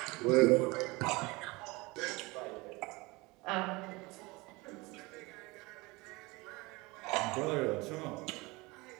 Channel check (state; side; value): quieter; left; 23.9 dB